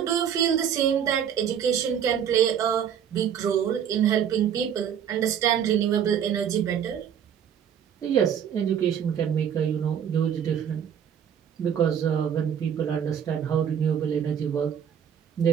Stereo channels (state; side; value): quieter; left; 8.6 dB